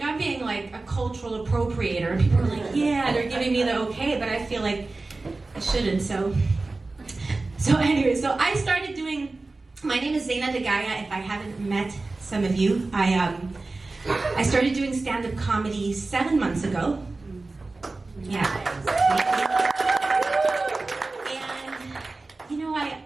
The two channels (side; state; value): left; quieter; 3.4 dB